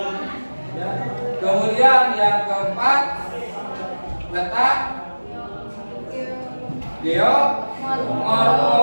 Ya. Kemudian yang keempat, letak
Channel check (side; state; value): both; inverted; correlation -1.00